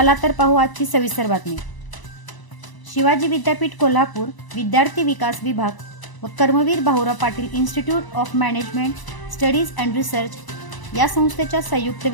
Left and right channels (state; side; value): late; right; 1.0 ms